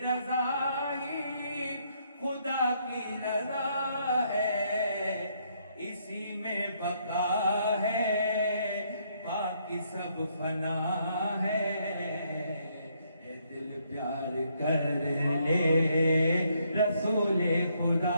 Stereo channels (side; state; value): both; inverted; correlation -0.72